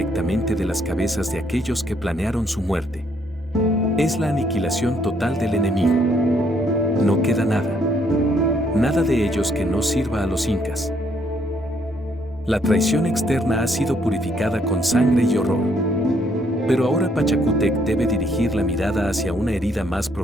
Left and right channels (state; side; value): normal; both; correlation 0.69